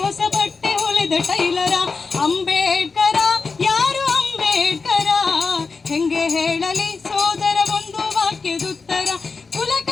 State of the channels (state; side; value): quieter; right; 4.5 dB